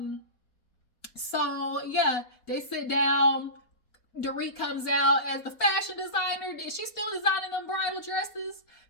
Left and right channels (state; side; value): late; right; 4.2 ms